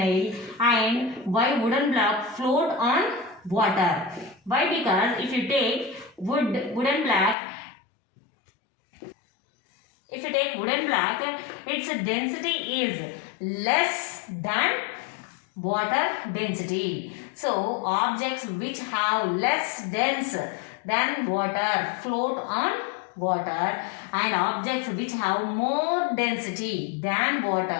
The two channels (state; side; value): drops out; right; at 7.4 s